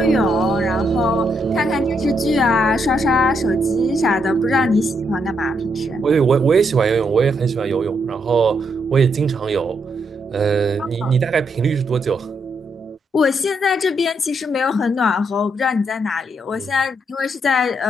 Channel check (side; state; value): both; normal; correlation 0.78